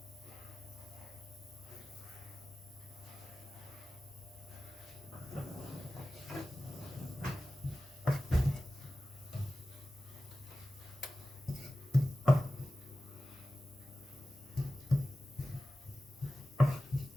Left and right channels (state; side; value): normal; both; correlation 0.95